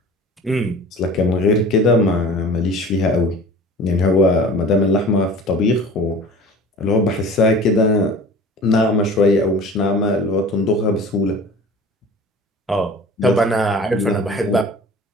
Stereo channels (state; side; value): normal; both; correlation 0.41